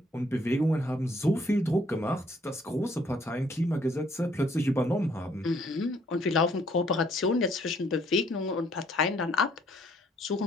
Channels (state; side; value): normal; both; correlation 0.65